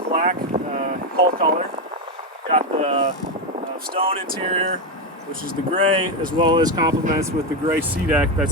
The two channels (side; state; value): both; normal; correlation 0.09